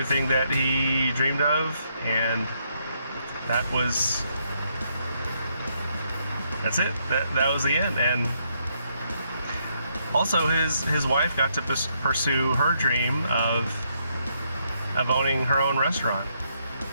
that he dreamed of, and that's it. That was the end. And also his wife got to pursue her dream of owning her own restaurant,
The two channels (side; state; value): both; inverted; correlation -0.75